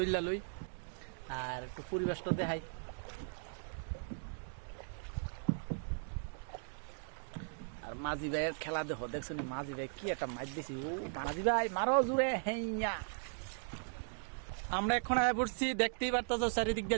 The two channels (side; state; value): left; silent; digital silence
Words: লই, আর একটু পরিবেশটা দেখাই। আর মাঝি ভাইয়ের খেলা দেখো, দেখছো নি মাঝি ভাই কি একটা মাছ দিছি। ও মাঝি ভাই মারো জুড়ে হেইয়া। আমরা এখন আয়া পড়ছি, দেখতেই পারতাছো চারিদিক